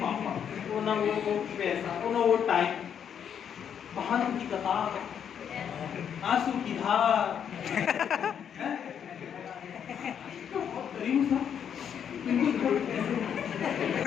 पापा, वो ना वो पैसा, वो ना वो टाइम, बहानों की कतार, आंसू की धार,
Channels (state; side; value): quieter; right; 8.3 dB